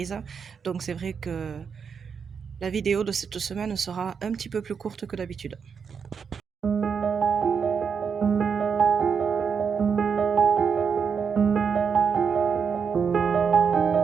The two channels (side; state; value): left; quieter; 6.4 dB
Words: Donc c'est vrai que la vidéo de cette semaine sera un petit peu plus courte que d'habitude.